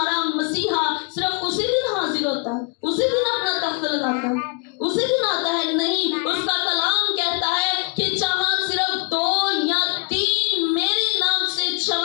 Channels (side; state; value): right; quieter; 35.6 dB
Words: मसीहा सिर्फ उसी दिन हाजिर होता है, उसी दिन अपना तख्त लगाता है, उसी दिन आता है? नहीं, उसका कलाम कहता है कि जहां सिर्फ 2 या 3 मेरे नाम से